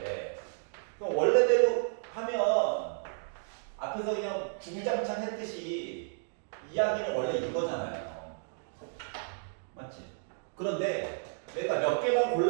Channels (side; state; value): left; silent; digital silence